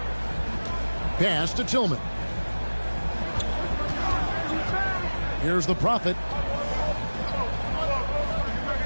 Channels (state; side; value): inverted; both; correlation -1.00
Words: Pass to Tillman. Here's the Prophet.